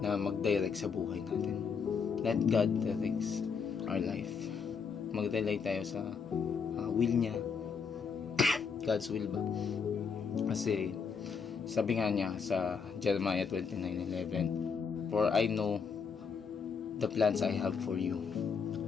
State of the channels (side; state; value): right; quieter; 5.9 dB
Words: mag-direct sa buhay natin. Let God directs our life. Mag-rely tayo sa will niya. God's will ba? Kasi sabi nga niya sa Jeremiah 29:11, for I know the plans I have for you,